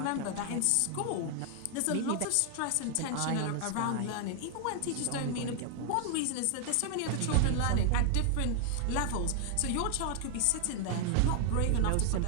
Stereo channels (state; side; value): different; both; correlation 0.00